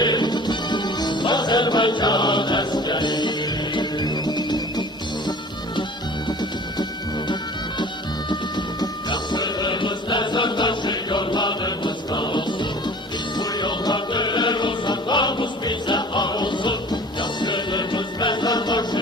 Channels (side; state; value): both; normal; correlation 0.45